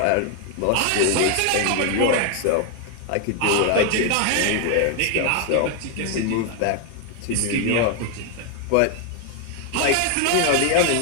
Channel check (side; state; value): both; different; correlation 0.01